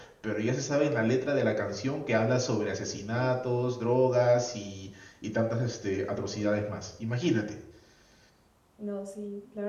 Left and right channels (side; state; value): both; identical; correlation 1.00